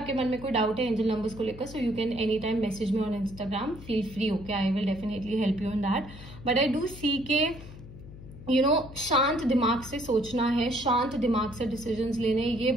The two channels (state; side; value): noise; left; hum, 16 dB below the sound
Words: मन में कोई डाउट है एंजल नंबर्स को लेकर, so you can any time message me on Instagram. Feel free. Okay, I will definitely help you in that. But I do see के शांत दिमाग से सोचना है, शांत दिमाग से डिसीजंस लेने, ये